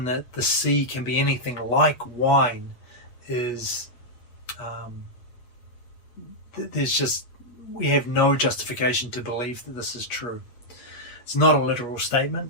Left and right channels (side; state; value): right; late; 8.3 ms